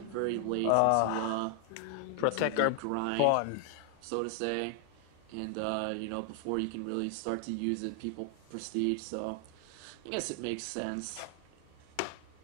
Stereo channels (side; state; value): both; different; correlation 0.00